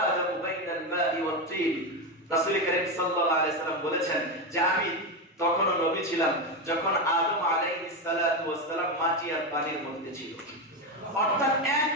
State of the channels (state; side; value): normal; both; correlation 0.13